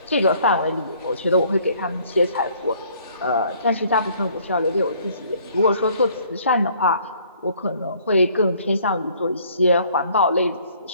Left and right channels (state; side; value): inverted; both; correlation -0.60